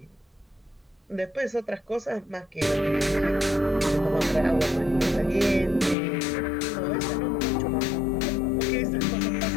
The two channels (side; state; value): right; drops out; at 6.0 s